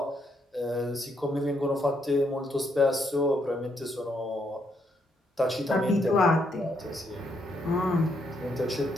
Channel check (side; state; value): both; normal; correlation 0.75